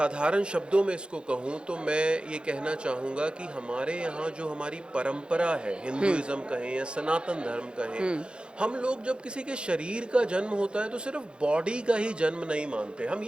शब्दों में इसको कहूँ, तो मैं ये कहना चाहूँगा कि हमारे यहाँ जो हमारी परंपरा है, हिंदुइज्म कहें या सनातन धर्म कहें, हम लोग जब किसी के शरीर का जन्म होता है तो सिर्फ बॉडी का ही जन्म नहीं मानते। हम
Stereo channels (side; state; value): left; late; 0.053 ms